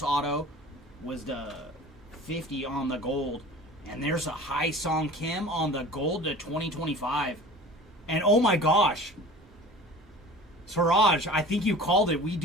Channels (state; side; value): normal; both; correlation 0.41